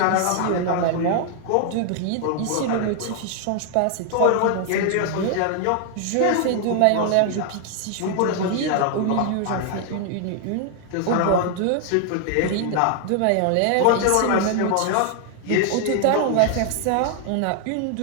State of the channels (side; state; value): both; different; correlation 0.00